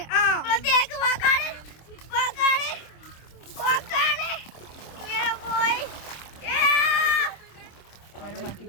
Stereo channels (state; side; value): late; right; 26 ms